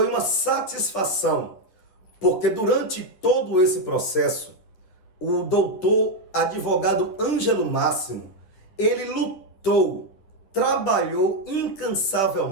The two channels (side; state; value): right; late; 10 ms